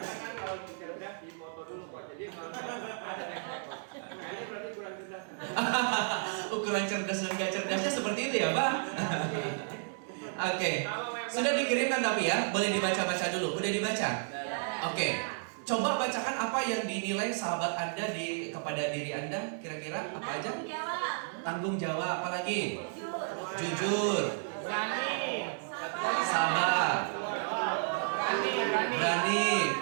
Ukuran cerdas dan gak cerdasnya seperti itu ya Pak? Oke, sudah dikirimkan tapi ya, boleh dibaca-baca dulu. Udah dibaca? Oke, coba bacakan apa yang dinilai sahabat Anda kepada diri Anda. Kira-kira apa aja? Tanggung jawab, apa lagi? Jujur. Berani. Sabar. Berani.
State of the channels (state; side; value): silent; left; digital silence